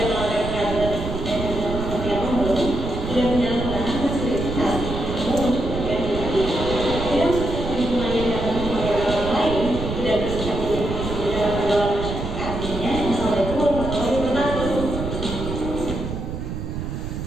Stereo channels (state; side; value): noise; right; rumble, 5 dB below the sound